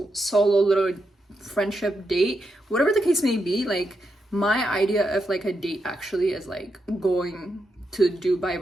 solo little friendship date, whatever the case may be. Like, my idea of like a date actually is like going to do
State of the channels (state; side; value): normal; both; correlation 0.84